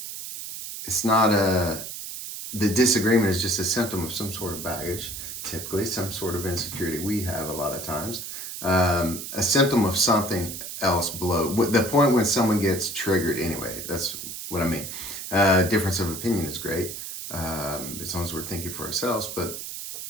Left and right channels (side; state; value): right; noise; hiss, 8 dB below the sound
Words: it's not the disagreement is just a symptom of some sort of baggage, typically some sort of insecurity we have a lot of times, a symptom of something else below the point when someone gets triggered. Anyway, that's what I mean. Difference of opinion is great, as long as we're thinking for ourselves, but